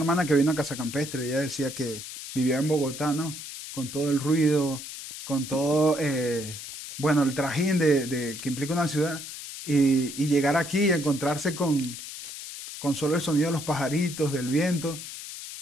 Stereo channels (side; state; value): left; noise; hiss, 10 dB below the sound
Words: que vino a Casa Campestre, ella decía que vivía en Bogotá, ¿no? Con todo el ruido, con todo, bueno, el trajín que implica una ciudad, y llegar aquí y encontrarse con solo el sonido de los pajaritos, del viento,